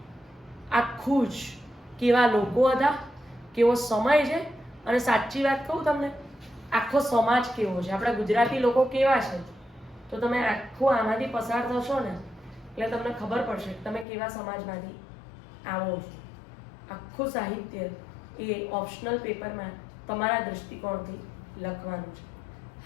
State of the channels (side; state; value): right; drops out; at 14.1 s